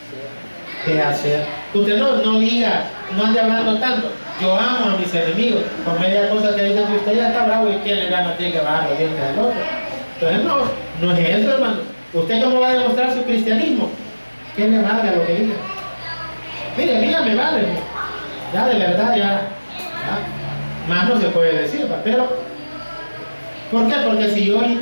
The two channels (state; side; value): inverted; both; correlation -1.00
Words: De hacer. Usted no diga, no ande hablando tanto. Yo amo a mis enemigos. Con media cosa que dicen que usted ya está bravo y quién le gana, tiene que bajar los dientes al otro. Entonces no es eso, hermano. ¿Usted cómo va a demostrar su cristianismo? ¿Qué le valga lo que diga? Mire, a mí ya me vale. Ya de verdad, ya más no se puede decir, ¿va? Pero ¿por qué? Porque si yo